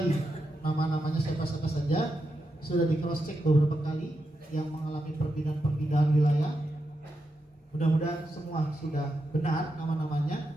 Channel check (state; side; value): normal; both; correlation 0.86